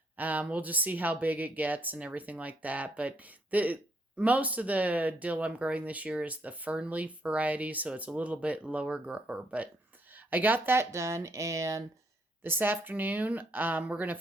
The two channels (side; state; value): both; normal; correlation 0.72